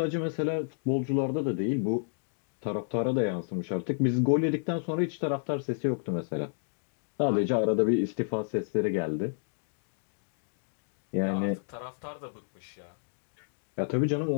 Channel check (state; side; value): silent; right; digital silence